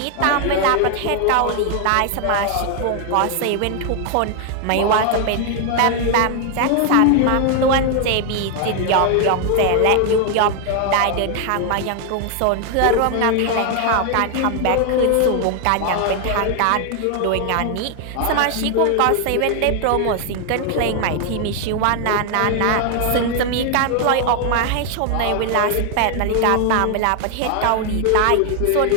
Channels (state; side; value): different; both; correlation 0.00